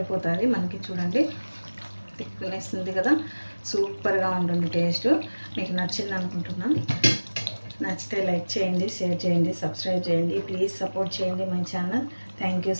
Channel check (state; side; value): inverted; both; correlation -1.00